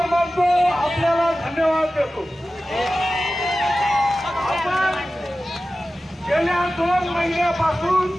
मानतो, आपल्याला धन्यवाद देतो. आपण गेल्या 2 महिन्यापासून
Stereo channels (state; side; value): normal; both; correlation 0.95